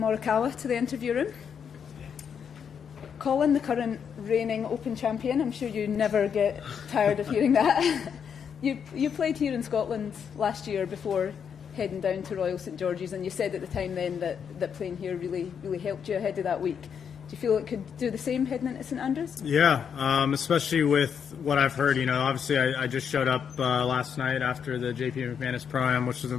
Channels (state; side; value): quieter; right; 7.3 dB